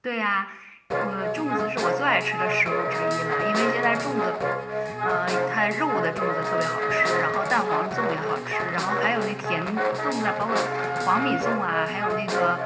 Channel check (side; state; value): both; identical; correlation 1.00